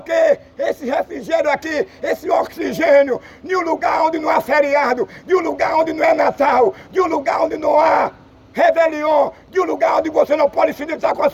quê? Esse refrigério aqui, esse oxigênio. De um lugar onde não há feriado. De um lugar onde não é Natal. De um lugar onde não há Réveillon, de um lugar onde você não pode se deitar com a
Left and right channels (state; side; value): identical; both; correlation 1.00